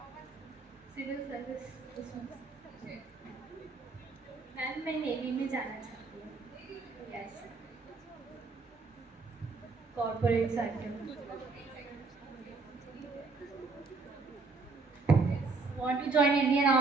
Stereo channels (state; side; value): quieter; left; 4.1 dB